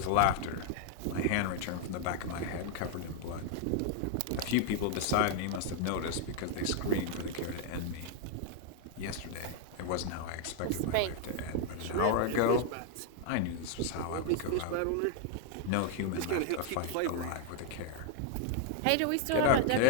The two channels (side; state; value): both; different; correlation 0.00